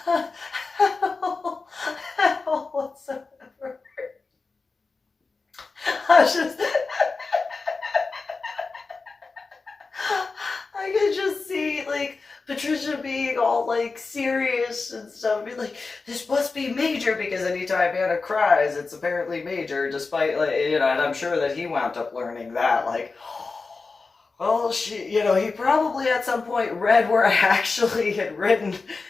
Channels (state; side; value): quieter; right; 4.1 dB